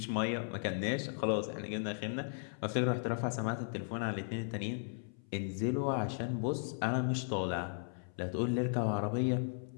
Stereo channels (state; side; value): silent; right; 54 dB below the other